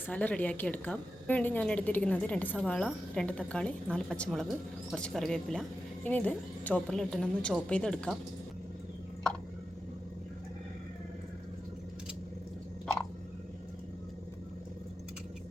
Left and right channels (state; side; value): normal; both; correlation 0.91